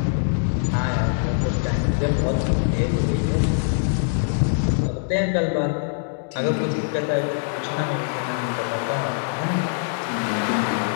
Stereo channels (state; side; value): silent; right; digital silence